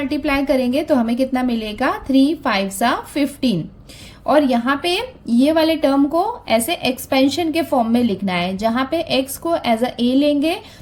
करेंगे तो हमें कितना मिलेगा, 3 5 ज़ा 15। और यहाँ पे ये वाले टर्म को ऐसे एक्सपेंशन के फॉर्म में लिखना है, जहाँ पे x को एज अ a लेंगे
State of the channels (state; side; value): identical; both; correlation 1.00